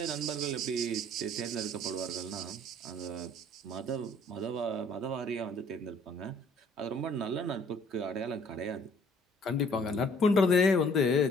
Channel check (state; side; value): normal; both; correlation 0.58